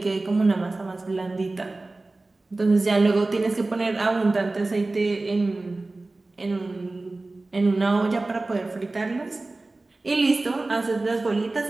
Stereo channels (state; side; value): quieter; left; 3.1 dB